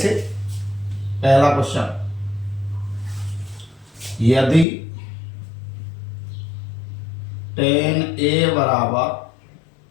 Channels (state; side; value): drops out; right; at 4.7 s